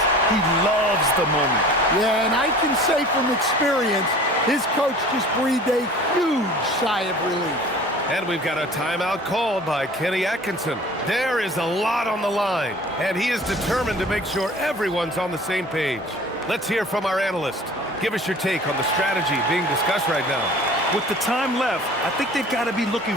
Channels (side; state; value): both; normal; correlation 0.45